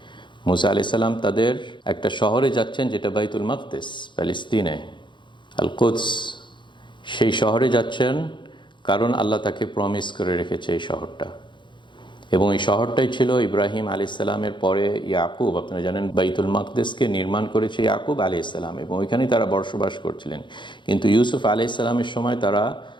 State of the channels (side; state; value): right; late; 0.23 ms